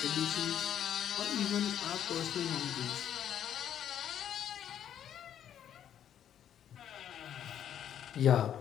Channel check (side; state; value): right; quieter; 9.9 dB